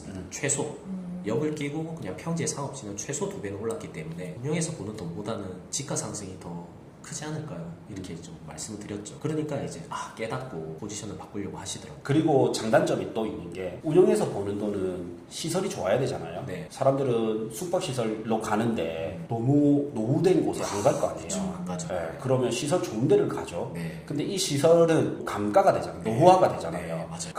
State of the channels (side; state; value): both; identical; correlation 1.00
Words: 최소. 역을 끼고 그냥 평지의 상업지는 최소 2배는 올랐기 때문에 운영에서 보는 돈보다는 지가 상승이 더 크지 않을까요? 이렇게 좀 말씀을 드렸죠. 그러니까 이제 깨닫고 포지션을 바꾸려고 하시더라고요. 그리고 장단점이 또 있는 게, 운영에서 버는 돈은 시설이 좋아야 되잖아요. 네. 사람들은 숙박시설로 가는데 너무 노후된 곳에 안 갈 거 아니에요. 그렇죠. 안 가죠. 네, 그러면 시설 좋은 데를 가죠. 네. 근데 이 시설은 감가가 되잖아요. 노후화가 되잖아요. 네, 맞아요.